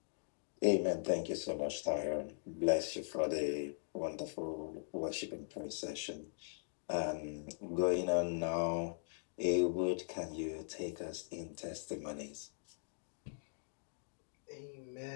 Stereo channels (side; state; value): right; silent; digital silence